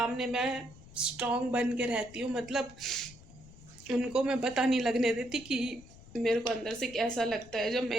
मैं स्ट्रॉन्ग बन के रहती हूँ, मतलब उनको मैं पता नहीं लगने देती कि मेरे को अंदर से कैसा लगता है जब मैं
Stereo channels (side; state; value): left; noise; rumble, 20 dB below the sound